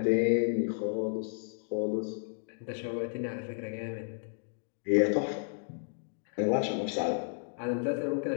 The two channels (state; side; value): silent; right; digital silence